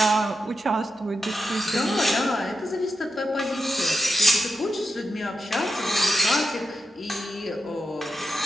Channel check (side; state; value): both; normal; correlation 0.89